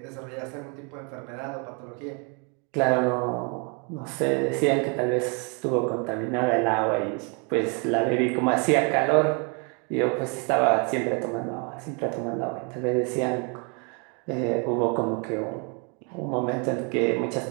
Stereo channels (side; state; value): left; quieter; 35.6 dB